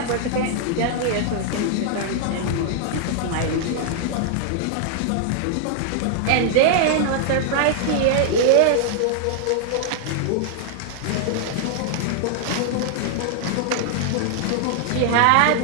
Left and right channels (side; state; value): both; different; correlation -0.01